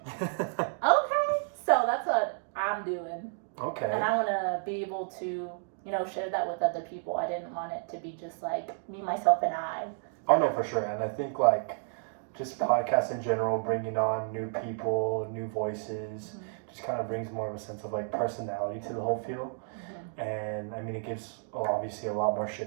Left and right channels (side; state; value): left; silent; digital silence